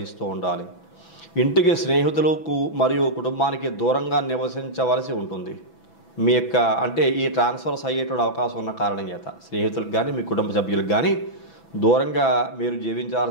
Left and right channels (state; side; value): late; right; 6.0 ms